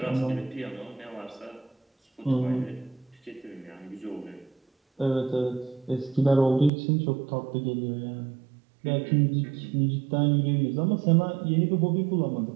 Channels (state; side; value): drops out; left; at 6.7 s